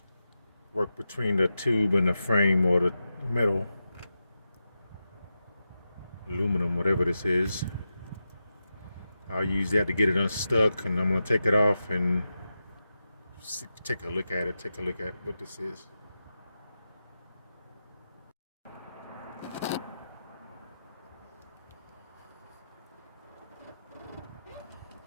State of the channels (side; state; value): both; inverted; correlation -0.91